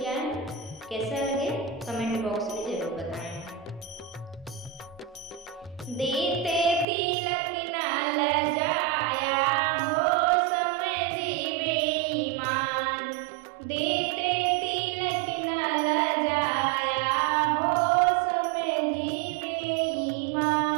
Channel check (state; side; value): drops out; left; at 6.9 s